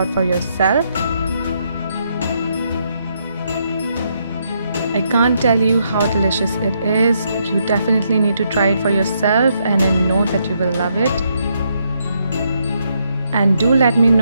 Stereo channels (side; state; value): both; inverted; correlation -0.76